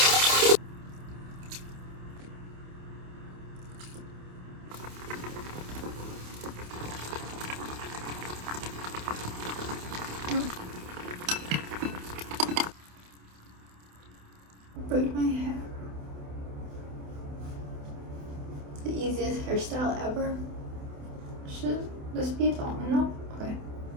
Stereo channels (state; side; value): late; left; 28 ms